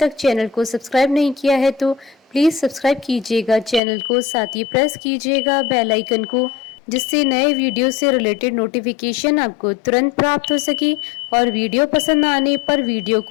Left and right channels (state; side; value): drops out; right; at 3.8 s